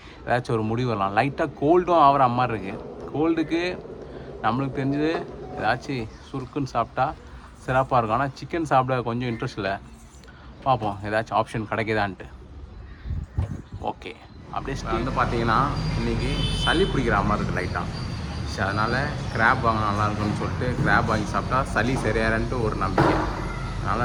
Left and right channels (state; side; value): identical; both; correlation 1.00